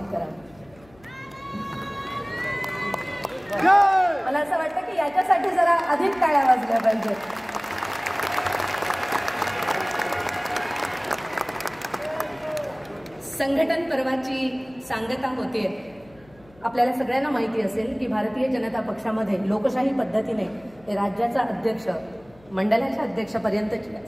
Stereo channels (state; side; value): noise; left; hum, 27 dB below the sound